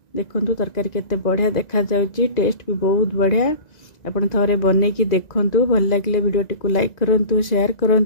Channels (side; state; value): right; late; 1.9 ms